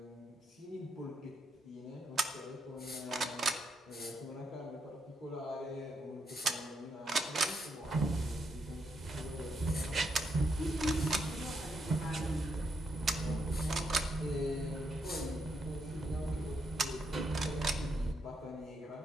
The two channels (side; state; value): both; normal; correlation 0.79